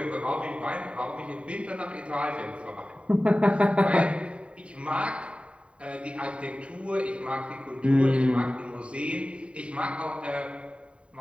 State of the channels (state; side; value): late; left; 0.060 ms